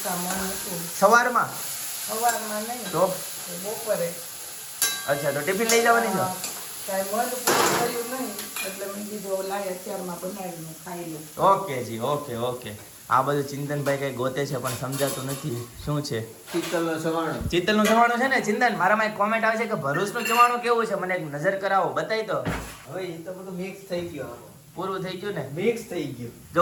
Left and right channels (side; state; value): both; identical; correlation 1.00